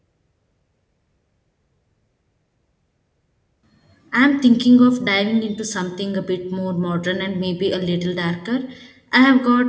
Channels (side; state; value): both; identical; correlation 1.00